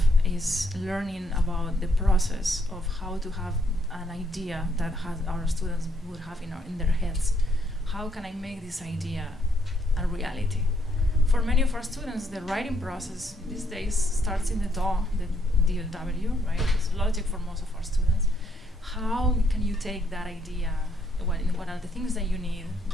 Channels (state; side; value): normal; both; correlation 0.72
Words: is learning about the process of how to have an idea that our students would have in their heads. How can I make this idea a reality? For many of our students, the writing process these days starts in the DAW, the DAW, right? It's logic for most of our students. How can you take that idea? What are the things that you need?